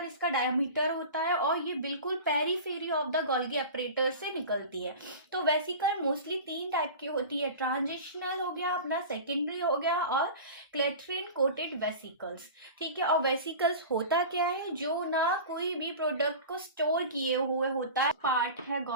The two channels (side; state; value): both; inverted; correlation -0.34